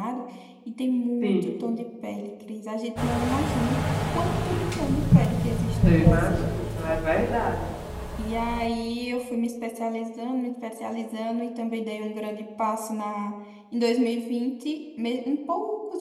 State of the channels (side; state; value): both; identical; correlation 1.00